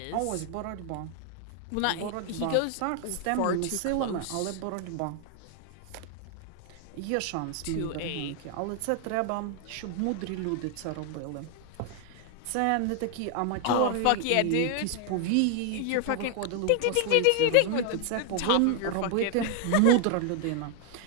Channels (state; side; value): different; both; correlation 0.00